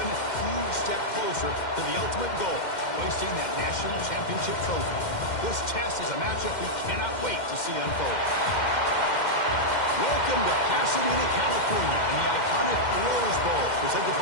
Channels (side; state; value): right; late; 2.1 ms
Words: huge step closer to the ultimate goal, hoisting that national championship trophy. This test is a matchup we cannot wait to see unfold. Welcome to Pasadena, California, and the iconic Rose Bowl, presented